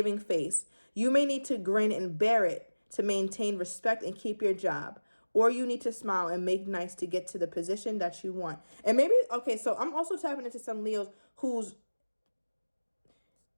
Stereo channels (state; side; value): inverted; both; correlation -1.00